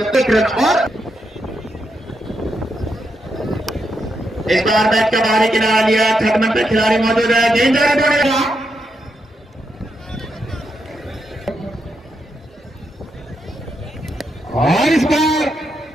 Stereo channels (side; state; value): both; normal; correlation 0.82